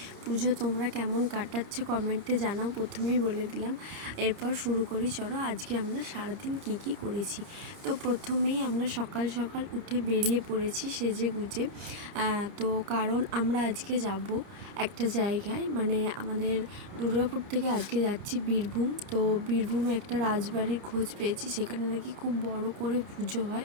পুজো। তোমরা কেমন কাটাচ্ছ কমেন্টে জানাও, প্রথমেই বলে দিলাম। এরপর শুরু করি, চলো আজকে আমরা সারাদিন কি করেছি। তো প্রথমেই আমরা সকাল সকাল উঠে বেরিয়ে পড়েছি সেজে গুজে। তো কারণ আমরা আজকে যাব একটা জায়গায়, মানে আমাদের দুর্গাপুর থেকে আজকে যাচ্ছি বীরভূম। তো বীরভূমে একটা রাজবাড়ির খোঁজ পেয়েছি, সেখানে নাকি খুব বড় করে পুজো হয়,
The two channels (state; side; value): late; left; 29 ms